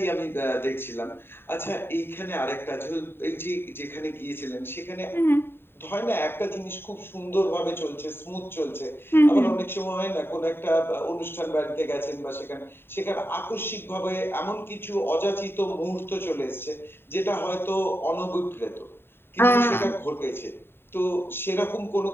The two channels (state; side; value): late; right; 0.11 ms